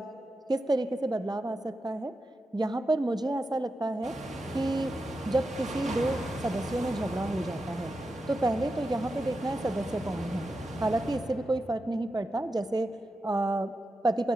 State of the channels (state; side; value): normal; both; correlation 0.89